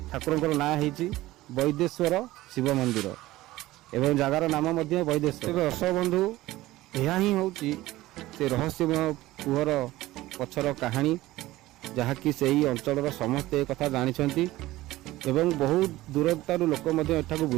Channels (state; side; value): quieter; left; 17.2 dB